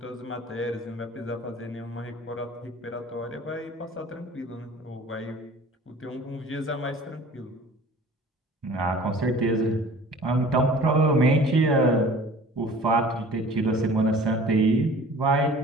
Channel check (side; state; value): both; normal; correlation 0.46